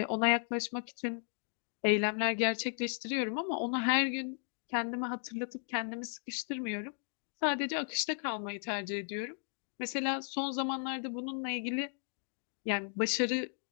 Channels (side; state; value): right; silent; 54 dB below the other